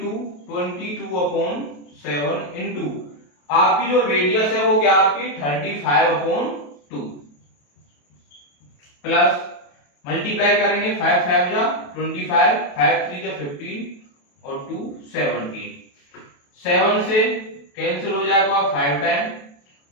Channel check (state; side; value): late; right; 28 ms